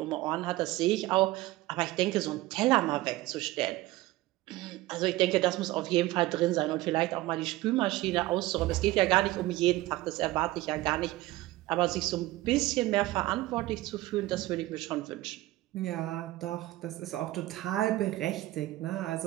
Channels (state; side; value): quieter; left; 17.8 dB